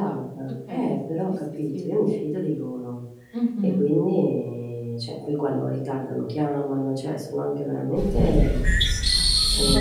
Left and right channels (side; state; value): both; identical; correlation 1.00